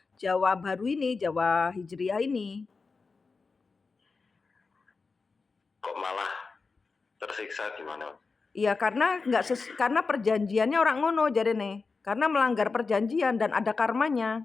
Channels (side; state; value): right; quieter; 4.4 dB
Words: baru ini, Jawa Hijriah ini. Kok malah tersiksa gimana? Iya, karena perjanjiannya orang ngono jarene. Karena melanggar perjanjian dan ada